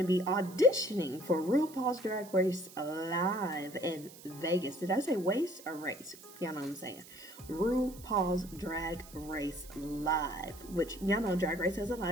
be auditioning for RuPaul's Drag Race Live in Vegas. Did I say waste or race? Y'all know what I'm saying. RuPaul's Drag Race Live, which y'all know Drag Race has a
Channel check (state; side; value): noise; right; hiss, 19 dB below the sound